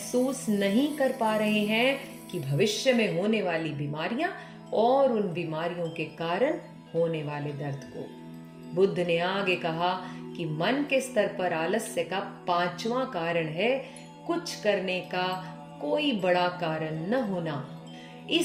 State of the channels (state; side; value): identical; both; correlation 1.00